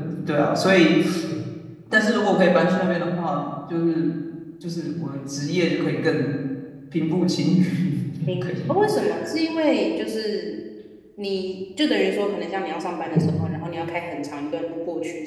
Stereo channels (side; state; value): both; identical; correlation 1.00